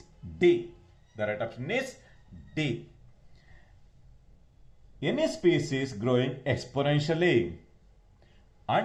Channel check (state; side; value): identical; both; correlation 1.00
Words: D. The right option is D. Any species growing exponentially